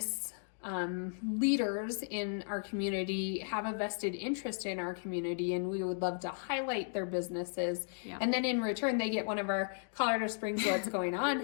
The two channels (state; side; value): silent; right; digital silence